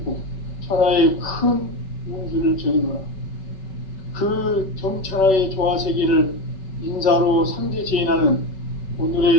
천하의 큰 운수를 정의노라. 그 정천하의 조화세계를 인사로 상제 제인하는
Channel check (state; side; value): late; right; 5.3 ms